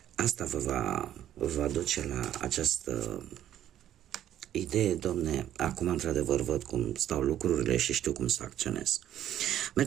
Asta vă va duce la această idee, domne, acum într-adevăr văd cum stau lucrurile și știu cum să acționez.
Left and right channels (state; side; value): quieter; left; 11.5 dB